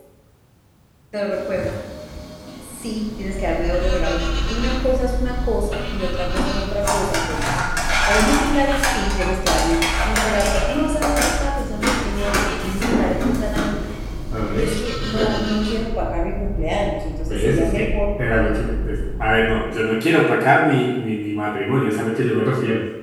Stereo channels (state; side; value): identical; both; correlation 1.00